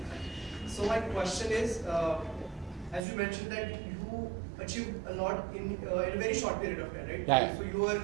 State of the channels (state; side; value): drops out; left; at 3.0 s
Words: So my question is, as you mentioned that you achieved a lot in a very short period of time, right? Yeah. So you were